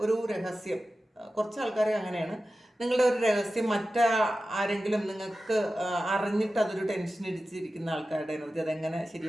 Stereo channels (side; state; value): both; normal; correlation 0.94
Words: ഒരു രഹസ്യം, കുറച്ച് ആൾക്കാരെ അങ്ങനെയാണ്, നിങ്ങളുടെ ഒരു രഹസ്യം ആരെങ്കിലും നിങ്ങൾക്ക് അറിഞ്ഞിട്ട് അതൊരു ടെൻഷൻ അടിച്ചിരിക്കുന്ന ആൾക്കാരുടെ എനർജി, അതെങ്ങനെ